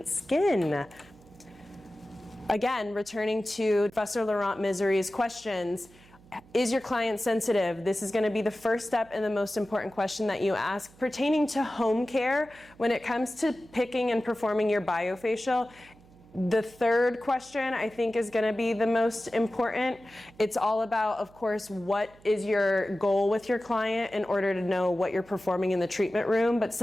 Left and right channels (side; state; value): right; noise; hum, 26 dB below the sound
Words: skin? Again, returning to Professor Laurent Misery's questions, is your client sensitive? This is going to be the first step and the most important question that you ask pertaining to home care when it comes to picking and performing your biofacial. The third question I think is going to be the most important. It's all about, of course, what is your goal with your client in order to know what you're performing in the treatment room. But